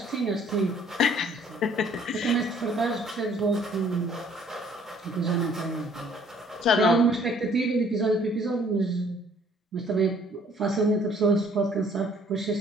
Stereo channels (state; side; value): normal; both; correlation 0.59